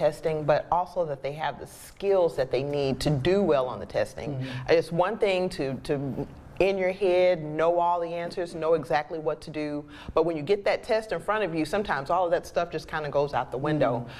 but also that they have the skills that they need to do well on the testing. It's one thing to in your head, know all the answers, know exactly what to do. But when you get that test in front of you, sometimes all of that stuff just kind of goes out the window.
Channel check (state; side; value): identical; both; correlation 1.00